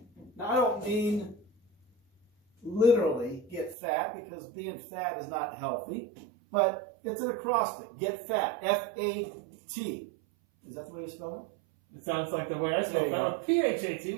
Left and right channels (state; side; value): drops out; left; at 3.8 s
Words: Now, I don't mean literally get fat, because being fat is not healthy, but it's an acrostic. Get fat. F-A-T. Is that the way you spell it? It sounds like the way I spell There you fat. Or P-H-A-T.